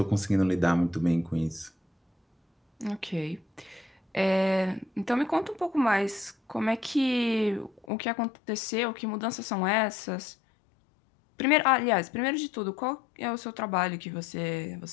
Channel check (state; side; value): drops out; right; at 7.9 s